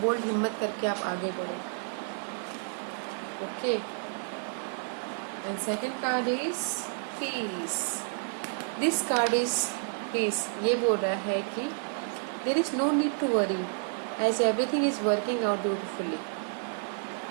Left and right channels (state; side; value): silent; left; digital silence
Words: बोल्ड हिम्मत करके आप आगे बढ़ो। Okay, and second card is peace. This card is peace. ये बोल रहा है कि there is no need to worry as everything is working out beautifully.